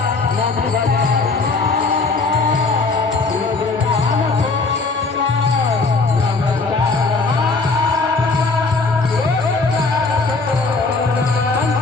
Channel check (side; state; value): right; quieter; 3.9 dB